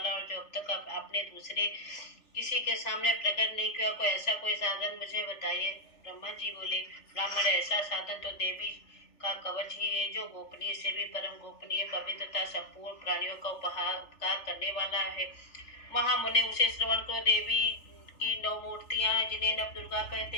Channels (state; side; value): late; right; 3.4 ms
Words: और जो अब तक आपने दूसरे किसी के सामने प्रकट नहीं किया, कोई ऐसा कोई साधन मुझे बताइए। ब्रह्मा जी बोले, ब्राह्मण ऐसा साधन तो देवी का कवच ही है, जो गोपनीय से भी परम गोपनीय पवित्रता संपूर्ण प्राणियों का उपकार करने वाला है। महामुनि उसे श्रवण करो। देवी की 9 मूर्तियां हैं, जिन्हें नव दुर्गा कहते